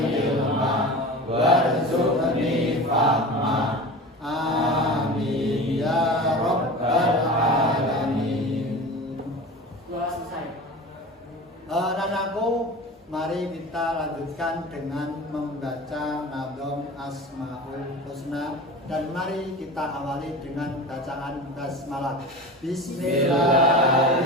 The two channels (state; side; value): normal; both; correlation 0.33